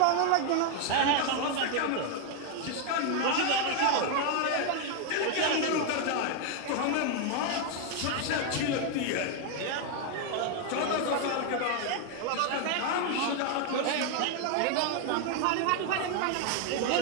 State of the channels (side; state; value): both; different; correlation 0.01